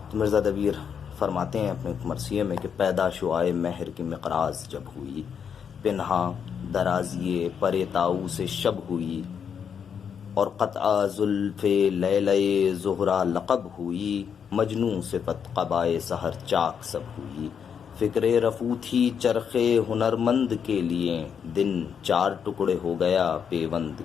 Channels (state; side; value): quieter; right; 7.3 dB